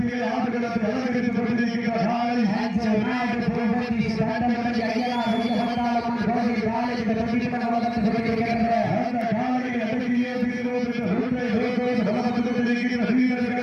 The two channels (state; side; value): identical; both; correlation 1.00